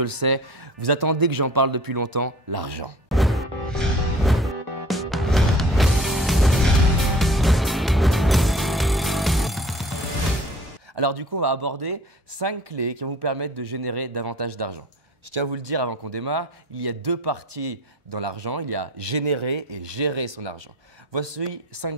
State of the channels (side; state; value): both; normal; correlation 0.47